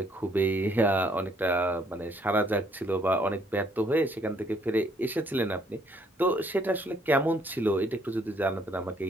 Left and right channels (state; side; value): normal; both; correlation 0.66